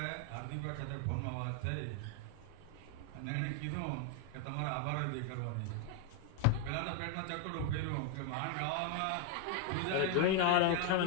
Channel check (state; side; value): different; both; correlation 0.01